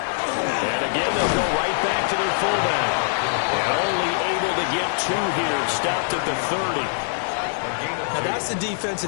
And again, they'll go right back to their fullback. And only able to get 2 here, stopped at the 30. Now that's the defense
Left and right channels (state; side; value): silent; right; digital silence